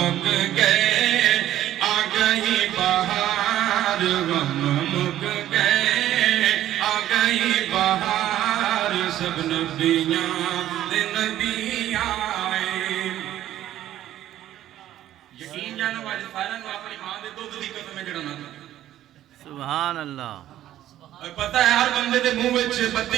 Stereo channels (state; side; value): quieter; left; 12.8 dB